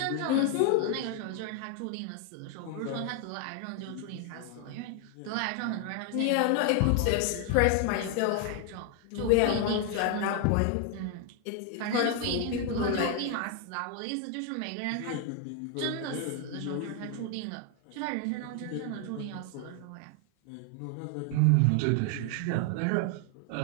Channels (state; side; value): different; both; correlation 0.00